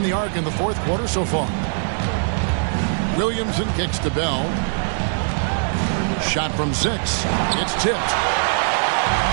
the arc in the 4th quarter so far. Williamson kicks to Bell. Shot from 6. It's tipped.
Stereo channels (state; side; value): silent; left; 62 dB below the other